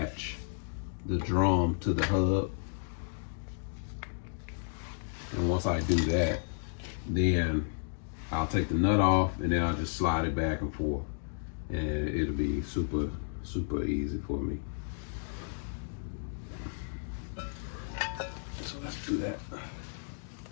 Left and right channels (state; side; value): silent; right; digital silence